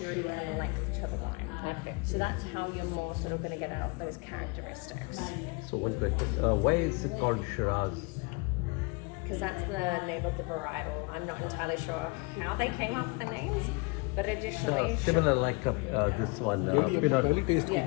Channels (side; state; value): right; quieter; 28.5 dB